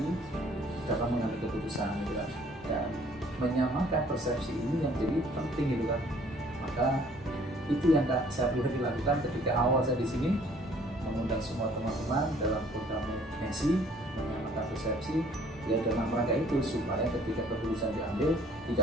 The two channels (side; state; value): both; normal; correlation 0.58